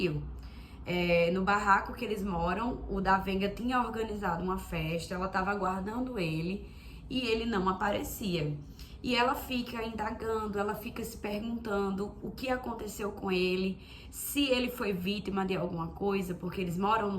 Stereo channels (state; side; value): identical; both; correlation 1.00